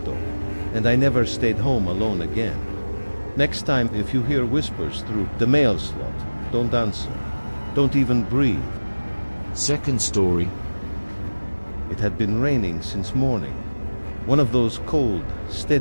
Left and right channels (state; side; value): inverted; both; correlation -1.00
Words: and I never stayed home alone again. Next time, if you hear whispers through the mail slot, don't answer. Don't even breathe. Second story. It had been raining since morning. One of those cold,